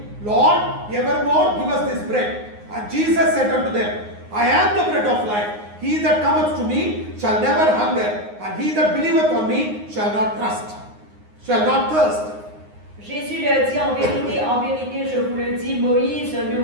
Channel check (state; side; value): late; left; 9.6 ms